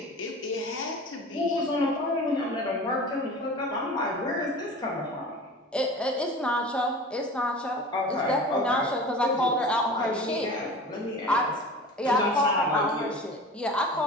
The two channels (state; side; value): normal; both; correlation 0.38